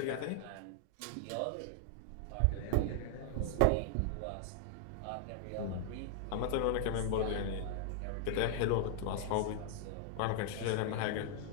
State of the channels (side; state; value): both; different; correlation -0.01